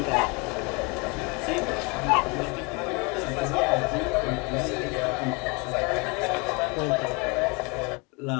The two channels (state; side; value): quieter; right; 29.5 dB